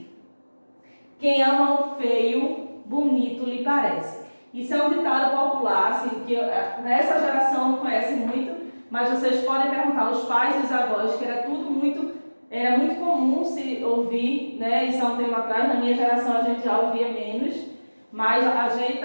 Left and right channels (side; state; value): both; inverted; correlation -1.00